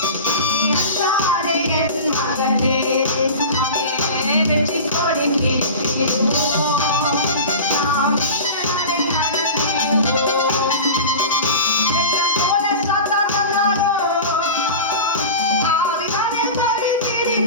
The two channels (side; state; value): both; inverted; correlation -0.31